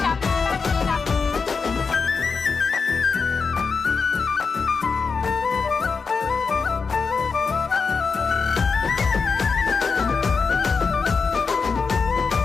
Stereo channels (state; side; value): quieter; right; 5.1 dB